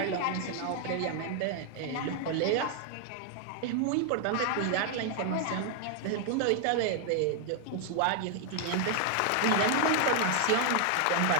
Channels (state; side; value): different; both; correlation 0.00